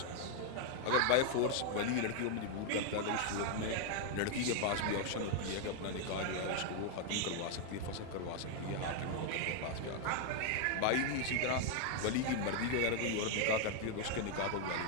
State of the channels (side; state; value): both; different; correlation 0.00